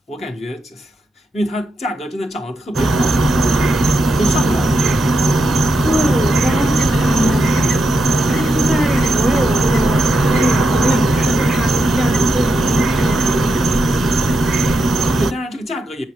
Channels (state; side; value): normal; both; correlation 0.84